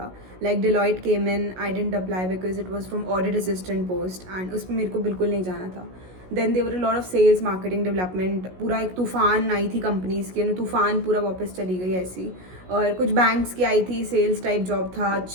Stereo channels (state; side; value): late; left; 16 ms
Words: Like Deloitte came in, I didn't apply because it was from audit assistant post and उसमें मेरे को बिल्कुल नहीं जाना था. Then there were a lot of sales marketing development, पूरा एक तूफान आई थी कंपनीज़ की, तूफान पूरा वापस चली गई ऐसी. और कुछ बैंक्स की आई थी, सेल्स टाइप जॉब था,